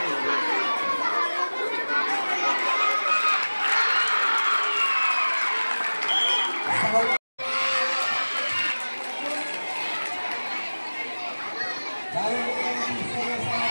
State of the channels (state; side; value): inverted; both; correlation -1.00